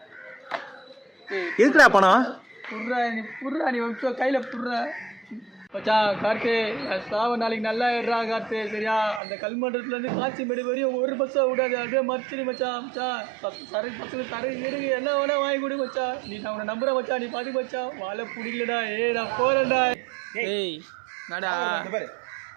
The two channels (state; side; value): drops out; left; at 9.2 s